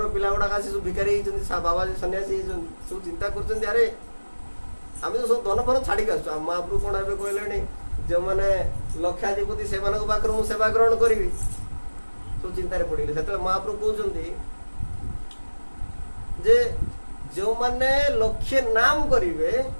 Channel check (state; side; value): inverted; both; correlation -1.00